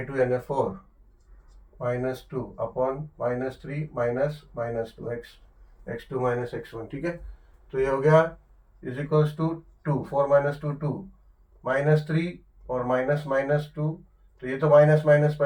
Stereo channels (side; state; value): both; identical; correlation 1.00